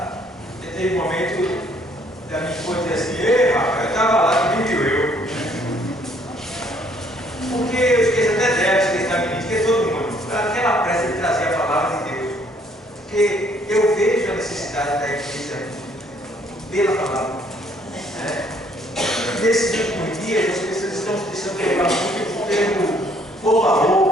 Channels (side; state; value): both; normal; correlation 0.64